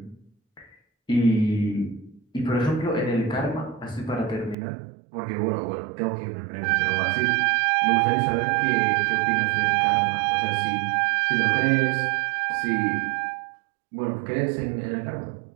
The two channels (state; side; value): drops out; left; at 4.5 s